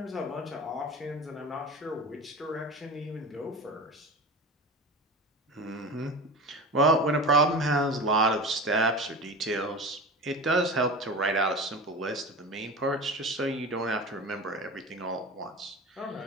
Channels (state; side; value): normal; both; correlation 0.31